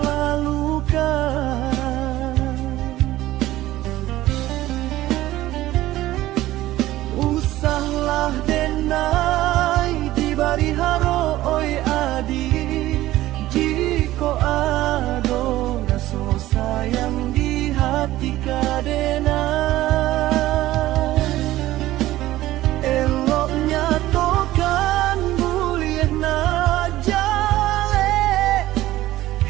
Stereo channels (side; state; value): left; quieter; 15.7 dB